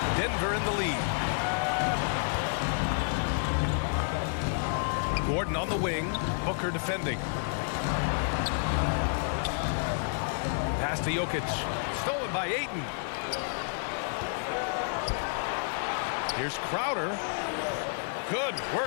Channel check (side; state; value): right; silent; digital silence